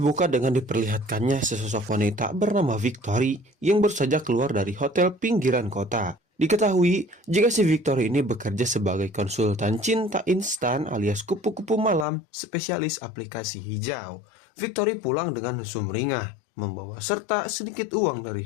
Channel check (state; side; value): drops out; right; at 12.1 s